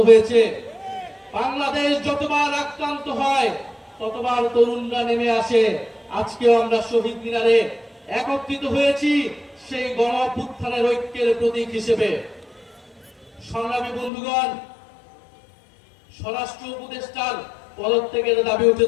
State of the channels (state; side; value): drops out; right; at 14.1 s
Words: হয়েছে। বাংলাদেশ যতবার আক্রান্ত হয় ততবার তরুণরা নেমে আসে। আজকেও আমরা শহীদ মিনারে একত্রিত হয়েছি সেই গণ অভ্যুত্থানের ঐক্যের প্রতীক হিসেবে। সংগ্রামী বন্ধুগণ, স্বরাষ্ট্র উপদেষ্টার পদত্যাগের দাবি